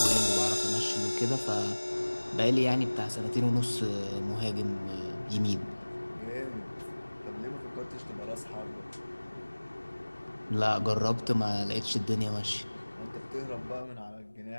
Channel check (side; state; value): both; inverted; correlation -1.00